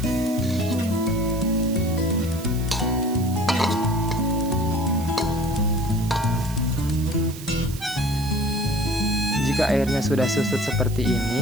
Jika airnya sudah susut seperti ini,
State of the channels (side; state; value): right; noise; hiss, 15 dB below the sound